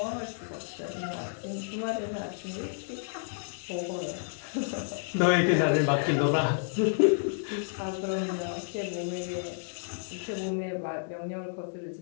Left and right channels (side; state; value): right; silent; digital silence